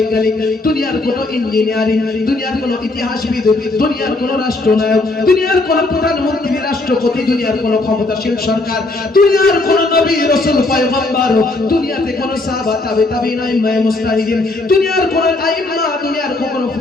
দুনিয়ার কোনো ইঞ্জিনিয়ারিং, দুনিয়ার কোনো ইতিহাসবিদ, দুনিয়ার কোনো রাষ্ট্রনায়ক, দুনিয়ার কোনো প্রধানমন্ত্রী, রাষ্ট্রপতি, দুনিয়ার কোনো ক্ষমতাশীল সরকার, দুনিয়ার কোনো নবী রাসূল পয়গম্বর, দুনিয়াতে কোনো সাহাবা তাবে তাবিঈন আইম্মায়ে মুজতাহিদিন, দুনিয়ার কোনো আইম্মা, দুনিয়ার কোনো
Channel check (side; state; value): right; quieter; 3.0 dB